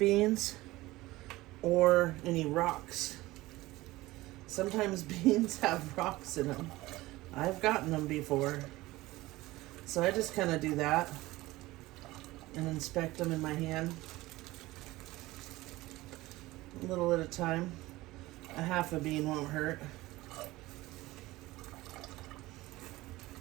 or any rocks. Sometimes beans have rocks in them. I've gotten them before. So I just kind of do that and inspect them in my hand. A little at a time. A half a bean won't hurt.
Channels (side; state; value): left; quieter; 18.8 dB